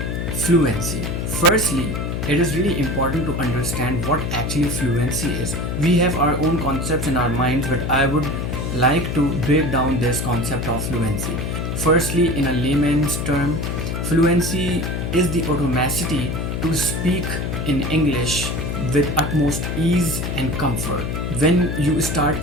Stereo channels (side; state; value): left; noise; hum, 2 dB below the sound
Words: fluency. Firstly, it is really important to understand what actually fluency is. We have our own concepts in our minds, but I would like to break down this concept of fluency. Firstly, in a layman's term, fluency is the automaticity to speak in English with utmost ease and comfort. When you